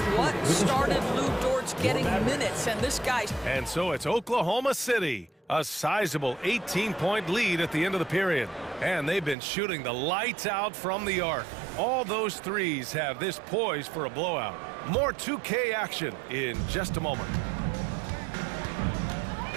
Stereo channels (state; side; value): drops out; left; at 9.3 s